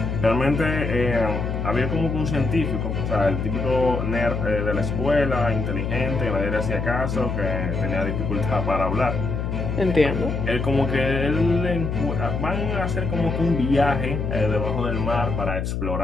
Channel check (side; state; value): left; noise; hum, 2 dB below the sound